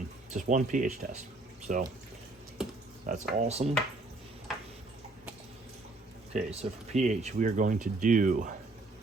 Just one pH test. So that's awesome. Okay, so for pH, we are going to do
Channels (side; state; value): left; quieter; 3.0 dB